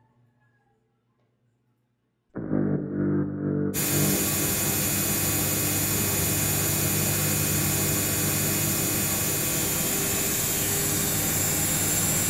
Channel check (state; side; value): identical; both; correlation 1.00